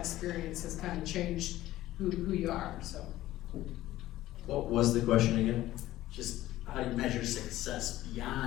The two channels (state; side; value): quieter; right; 15.3 dB